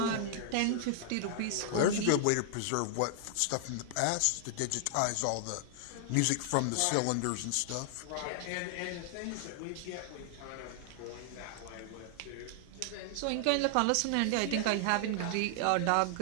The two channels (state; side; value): different; both; correlation 0.00